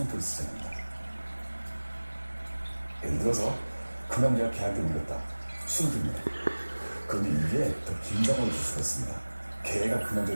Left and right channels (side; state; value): both; inverted; correlation -1.00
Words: 쓰지 않는다. 예를 들어서 그 남자가 걔한테 물렸다. 수동태입니다. 그런데 이게 더 긴장을 줄 수가 있습니다. 걔가 그